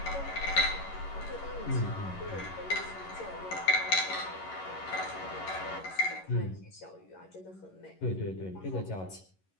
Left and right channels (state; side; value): late; right; 11 ms